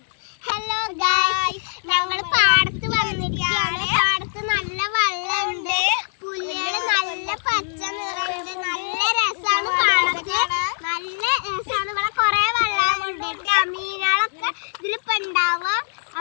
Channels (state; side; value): silent; right; digital silence